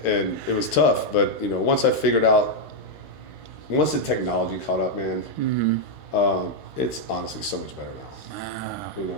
And it was tough, but you know, once the technology caught up, man, it's honestly so much better now. Wow. You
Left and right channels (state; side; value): late; right; 13 ms